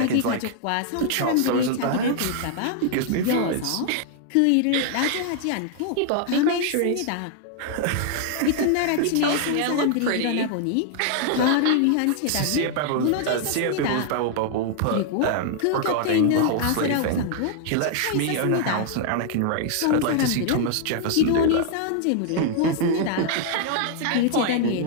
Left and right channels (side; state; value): both; different; correlation 0.00